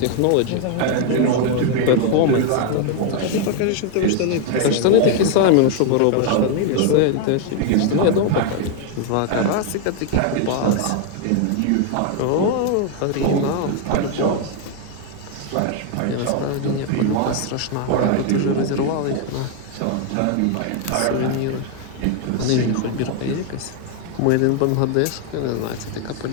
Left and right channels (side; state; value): both; different; correlation 0.01